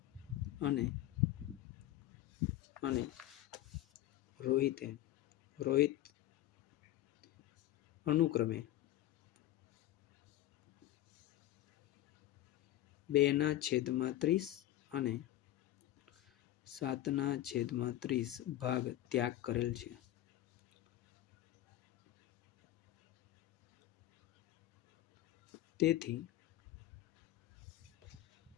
અને રોહિત અનુક્રમે 2/30 અને 7/30 ભાગ ત્યાગ કરેલ છે. તેથી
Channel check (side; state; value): right; quieter; 14.1 dB